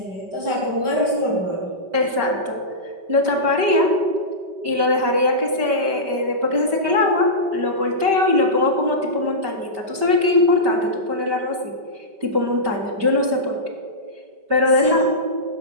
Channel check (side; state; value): left; late; 5.2 ms